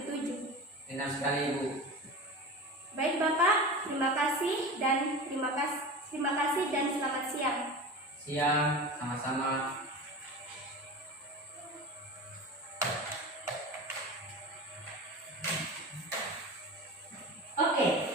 Benar sekali Ibu. Baik Bapak, terima kasih dan selamat siang. Siang, sama-sama. Oke,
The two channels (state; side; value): normal; both; correlation 0.31